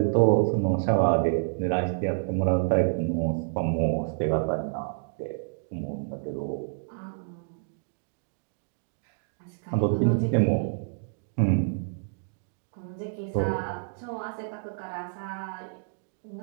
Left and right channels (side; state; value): left; silent; digital silence